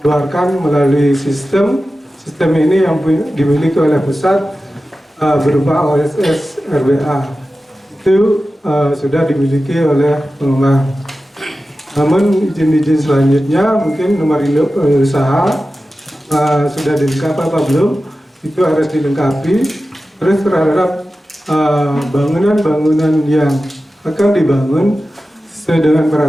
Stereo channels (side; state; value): both; normal; correlation 0.94